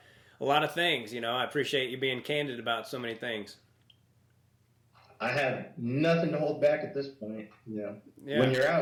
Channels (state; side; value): identical; both; correlation 1.00